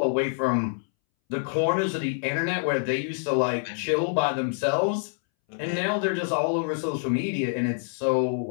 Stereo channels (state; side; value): silent; right; 61 dB below the other